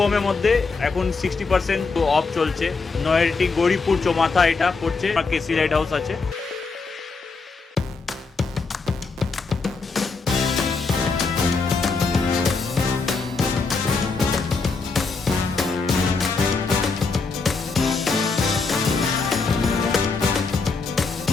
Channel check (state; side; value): quieter; right; 4.3 dB